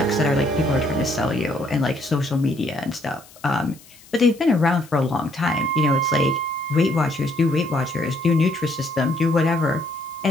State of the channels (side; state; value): left; noise; hiss, 24 dB below the sound